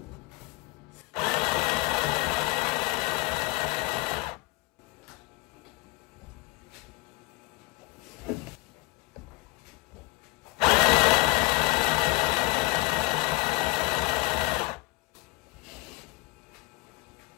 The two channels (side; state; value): right; quieter; 23.6 dB